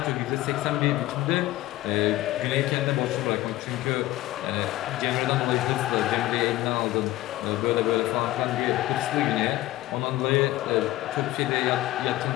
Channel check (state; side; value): quieter; right; 16.5 dB